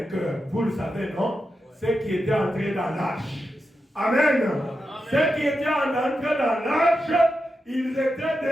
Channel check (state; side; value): normal; both; correlation 0.88